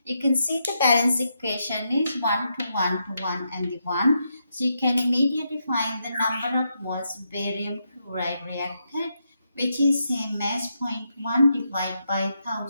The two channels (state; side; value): inverted; both; correlation -0.82